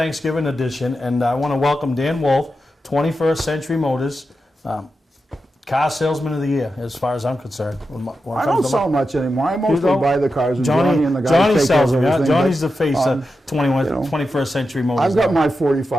edition, and I want to welcome Dan Wolf, 21st Century Motors, car salesman of the year, as far as I'm concerned. I don't sell much anymore. I mostly buy the cars, and Johnny and the guys Johnny take sells care them. of everything. Johnny's the face of 21st Century Motors. I've got my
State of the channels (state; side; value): normal; both; correlation 0.90